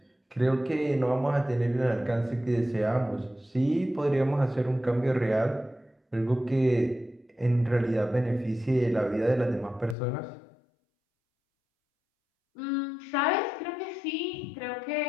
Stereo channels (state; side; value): drops out; right; at 10.0 s